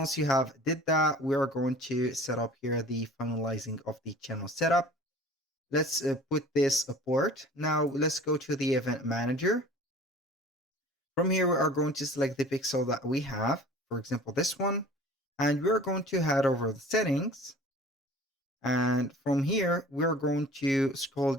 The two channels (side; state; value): both; normal; correlation 0.45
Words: you have did that, we are going to set up here the finalizing of the channel setup. Let's put this port. Now let's go to the event manager. From here, we are going to select the pixel that we have, for example, this one, and we're going to head over the settings. And from here, we're going to scroll